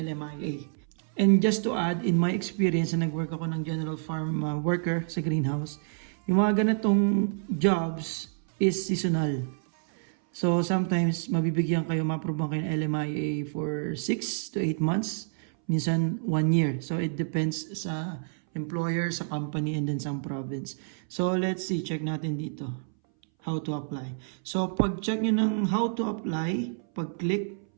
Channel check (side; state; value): left; silent; 59 dB below the other